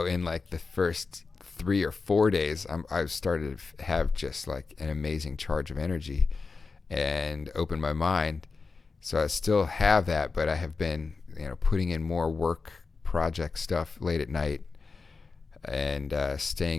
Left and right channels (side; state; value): right; quieter; 4.4 dB